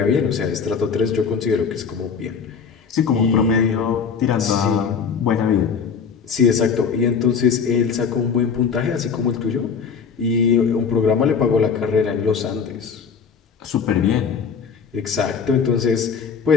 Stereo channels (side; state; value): right; quieter; 6.2 dB